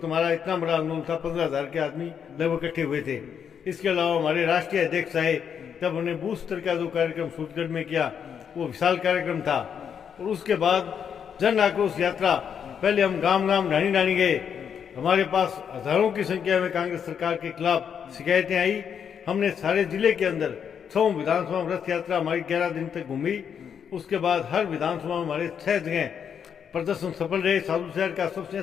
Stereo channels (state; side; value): quieter; right; 7.7 dB